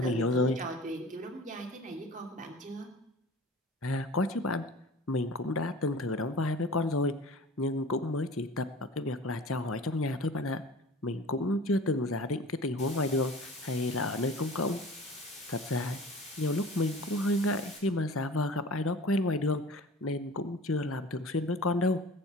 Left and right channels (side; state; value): both; normal; correlation 0.40